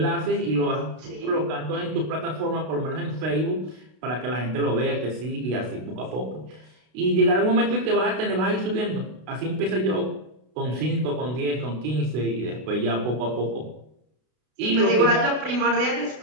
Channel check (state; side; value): late; left; 32 ms